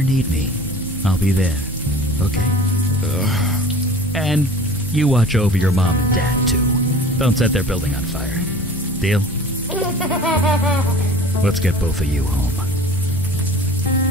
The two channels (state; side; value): normal; both; correlation 0.43